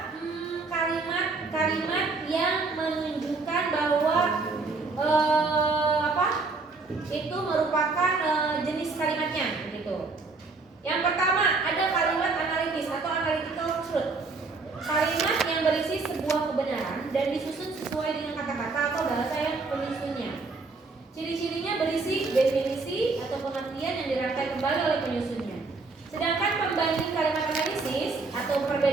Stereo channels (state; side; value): quieter; left; 3.9 dB